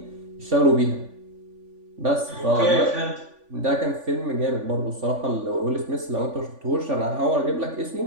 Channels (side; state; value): left; late; 3.5 ms